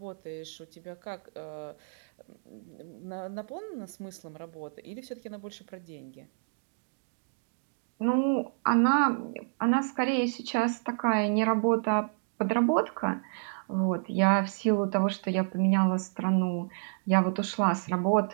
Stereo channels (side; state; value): left; silent; digital silence